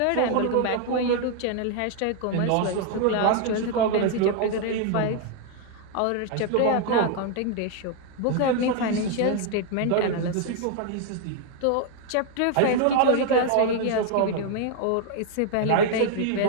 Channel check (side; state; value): both; different; correlation 0.00